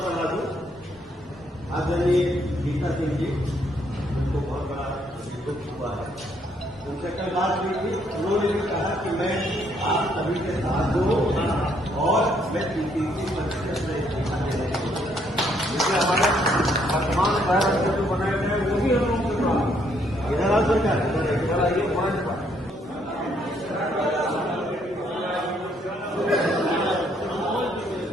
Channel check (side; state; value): both; normal; correlation 0.70